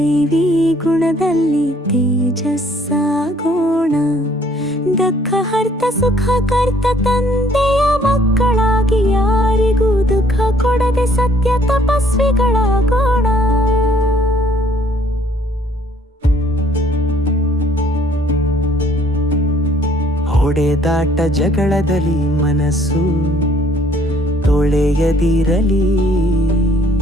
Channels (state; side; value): normal; both; correlation 0.62